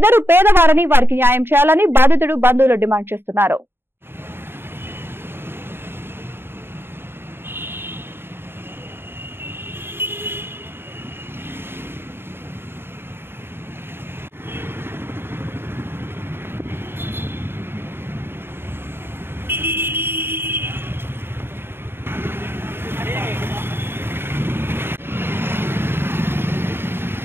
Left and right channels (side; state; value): left; late; 0.11 ms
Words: పేదవారని, వారికి న్యాయం చేయాలని బాధితుడు బంధువులు డిమాండ్ చేస్తున్నారు.